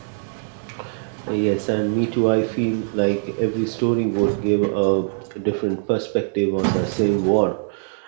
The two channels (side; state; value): left; silent; digital silence